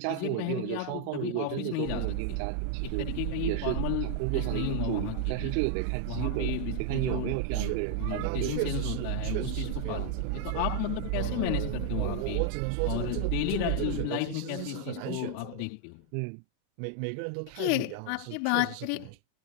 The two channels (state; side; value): different; both; correlation 0.00